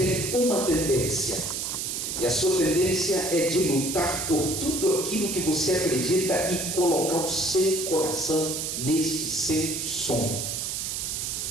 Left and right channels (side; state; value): right; noise; hiss, 3 dB below the sound